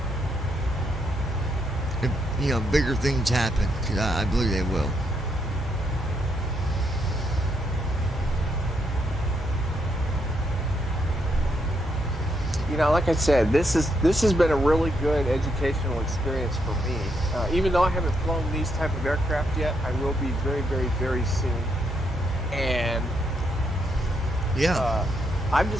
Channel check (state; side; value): normal; both; correlation 0.77